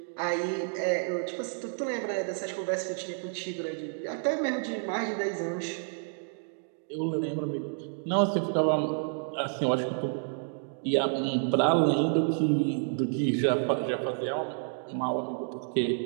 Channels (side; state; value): left; silent; digital silence